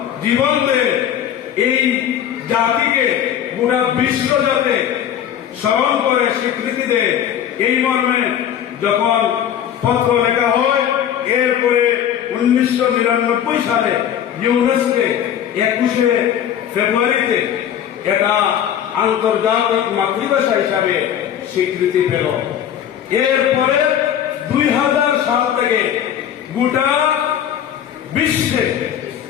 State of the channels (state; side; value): quieter; right; 9.9 dB